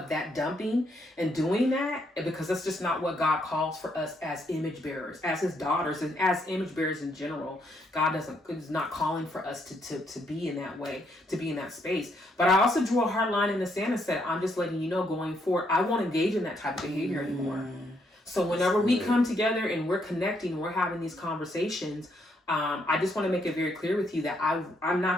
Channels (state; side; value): normal; both; correlation 0.74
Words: that dumping and doing that, because that's just not what God calls for us as image bearers, as his daughters, and as image bearers in general. God is not calling for us to be in that way, to be in that space. But I also drew a hard line in the sand and said, I'm just letting you know going forward, I won't engage in that type of behavior anymore. So whenever we come together and we're connecting and we're having these conversations, I just want to make it very clear with you that I'm